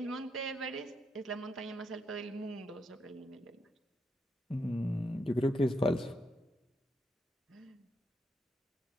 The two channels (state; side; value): normal; both; correlation 0.80